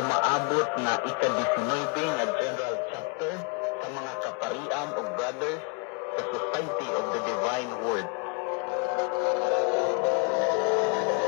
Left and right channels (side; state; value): right; quieter; 34.3 dB